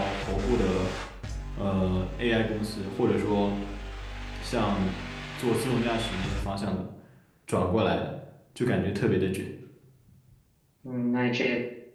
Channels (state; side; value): identical; both; correlation 1.00